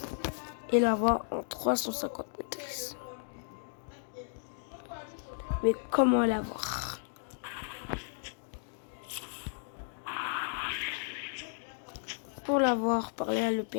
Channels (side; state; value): right; silent; digital silence